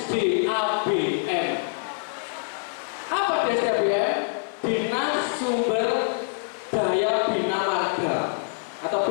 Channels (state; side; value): silent; right; 56 dB below the other